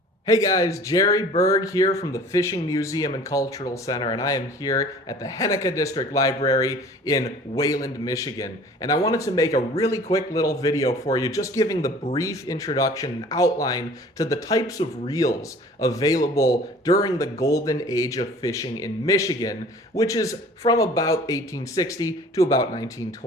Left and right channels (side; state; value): both; normal; correlation 0.48